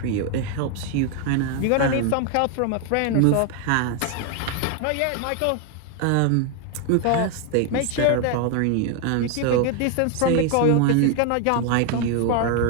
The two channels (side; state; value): both; different; correlation 0.01